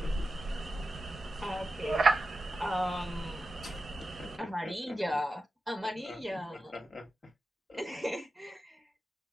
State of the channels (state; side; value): normal; both; correlation 0.91